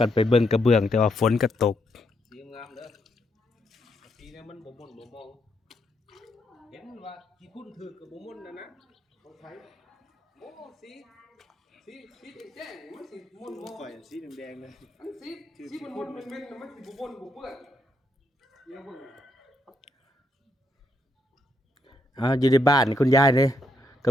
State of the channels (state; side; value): normal; both; correlation 0.77